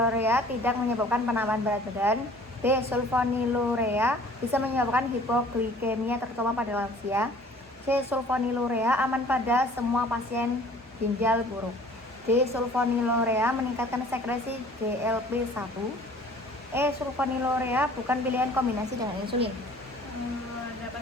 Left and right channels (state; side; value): normal; both; correlation 0.51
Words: tidak menyebabkan penambahan berat badan. B. Sulfonilurea bisa menyebabkan hipoglikemia terutama pada lansia. C. Sulfonilurea aman pada semua pasien ginjal buruk. D. Sulfonilurea meningkatkan sekresi GLP-1. E. Sulfonilurea bukan pilihan kombinasi dengan insulin. Dapat